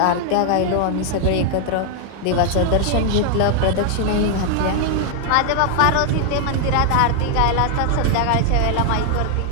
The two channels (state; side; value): different; both; correlation 0.00